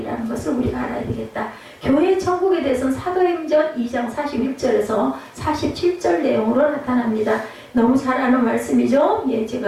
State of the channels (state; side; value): identical; both; correlation 1.00